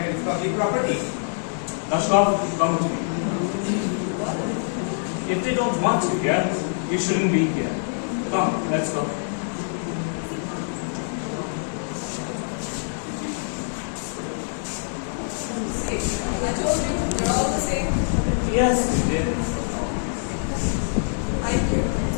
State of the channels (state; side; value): silent; right; digital silence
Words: It's public property. Lashkov, come with me. If they don't want you here, you shouldn't be here. Come, let's go. See, I told you, we're all the same. Yes, you did. Thank you.